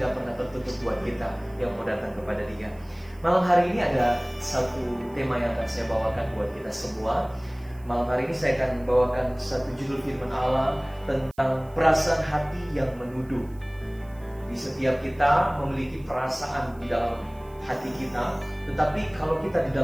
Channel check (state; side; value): noise; right; hiss, 29 dB below the sound